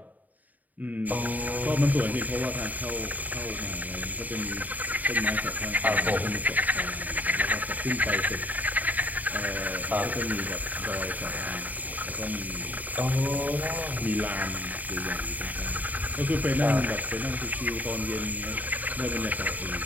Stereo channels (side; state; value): left; late; 0.079 ms